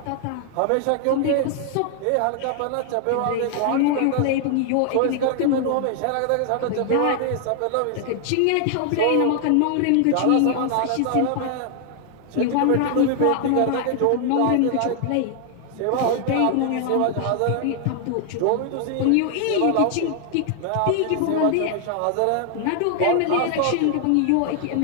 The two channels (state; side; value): different; both; correlation 0.00